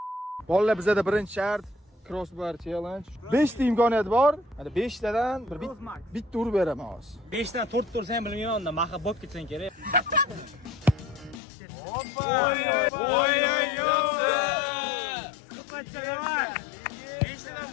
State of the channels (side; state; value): right; drops out; at 11.4 s